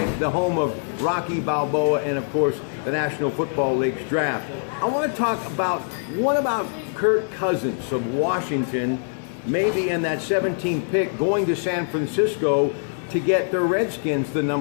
the home of Rocky Balboa and, of course, the National Football League's draft. I want to talk about, what about Kirk Cousins of Washington, maybe in that 17th pick, going to San Francisco to get the Redskins the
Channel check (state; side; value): silent; right; 63 dB below the other